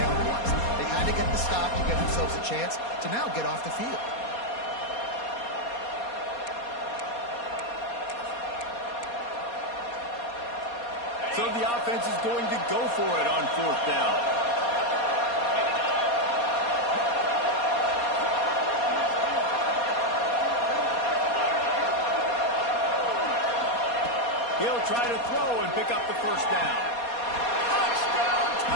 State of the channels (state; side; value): late; right; 4.2 ms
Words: was. They had to get the stop to give themselves a chance to now get off the field. So the offense is going to go for it on fourth down. He'll try to throw and pick up the first down. Touchdown,